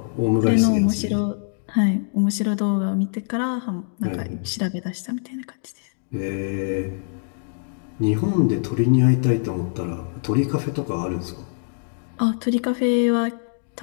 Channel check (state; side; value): silent; right; digital silence